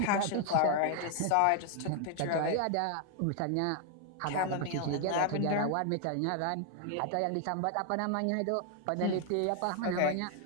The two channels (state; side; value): different; both; correlation 0.00